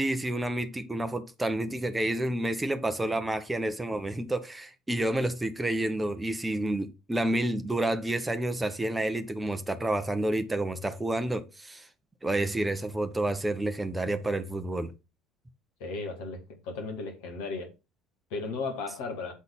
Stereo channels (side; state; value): both; normal; correlation 0.87